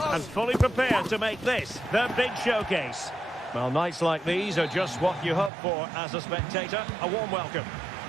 fully prepared to make this their big showcase. Well, nights like these are just what you hope for as a spectator. A warm welcome.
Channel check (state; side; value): drops out; left; at 5.5 s